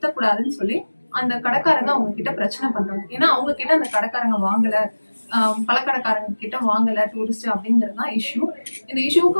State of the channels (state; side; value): inverted; both; correlation -1.00